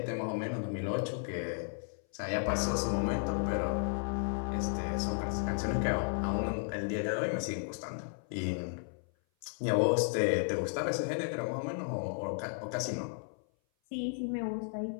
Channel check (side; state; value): right; silent; 55 dB below the other